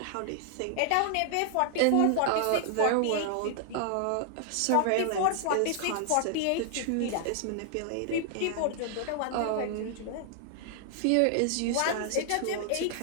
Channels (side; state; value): both; different; correlation -0.01